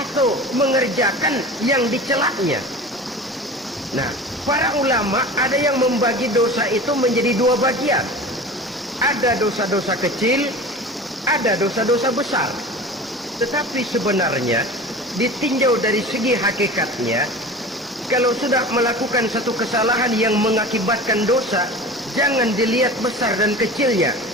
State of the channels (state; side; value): normal; both; correlation 0.35